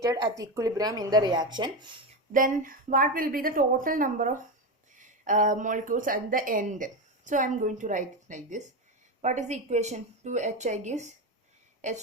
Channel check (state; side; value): normal; both; correlation 0.15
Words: at equilibrium in the reaction. Then what will be the total number of molecules at the end? So I am going to write it like this. What is the equation? 2HI gives